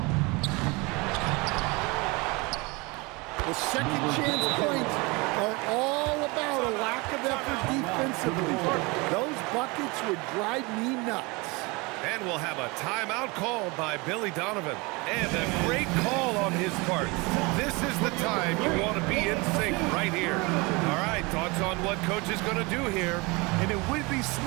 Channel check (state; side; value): quieter; left; 26.2 dB